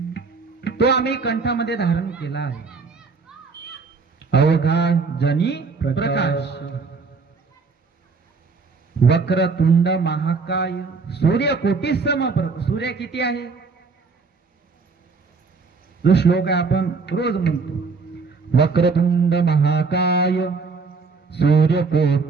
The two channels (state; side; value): quieter; left; 4.6 dB